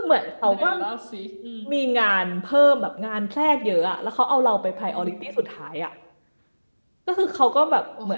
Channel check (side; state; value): both; inverted; correlation -1.00